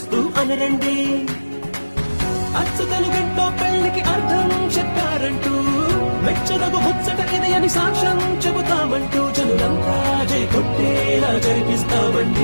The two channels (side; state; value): both; inverted; correlation -1.00